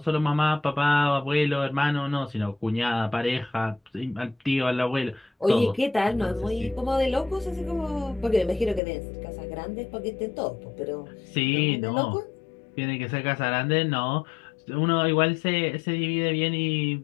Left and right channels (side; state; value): right; drops out; at 8.8 s